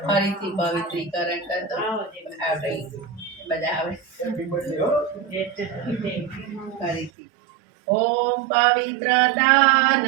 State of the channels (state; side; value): drops out; left; at 7.1 s